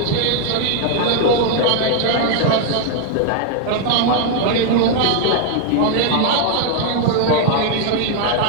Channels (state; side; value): different; both; correlation 0.01